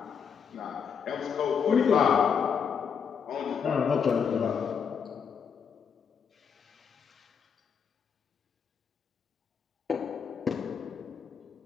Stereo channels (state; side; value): quieter; right; 6.8 dB